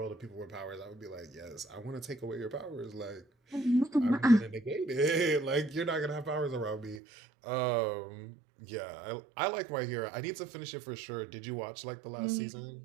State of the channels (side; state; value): left; drops out; at 7.0 s